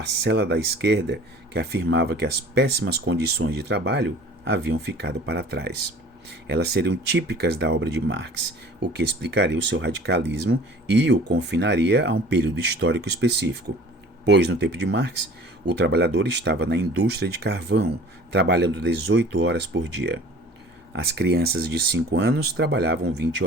da esquerda que afirmava que as péssimas condições de trabalho haviam ficado para trás. Elas seriam típicas da obra de Marx, o que explicaria o seu radicalismo e o confinaria a um período histórico específico. Pois, no tempo de Marx, o trabalhador estava na indústria de carvão, trabalhando 18 horas por dia. As crianças de 5 anos trabalhavam 20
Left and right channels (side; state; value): both; normal; correlation 0.46